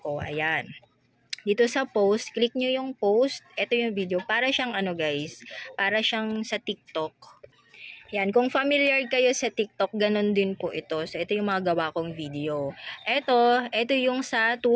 Ayan. Dito sa post, click nyo yung post. Ito yung video. Para siyang ano guys, para siyang sa TikTok. Yan, kung familiar kayo sa TikTok, ganun din po ito. So, ito yung mga gawa kong video. Ito yung sa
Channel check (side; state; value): both; identical; correlation 1.00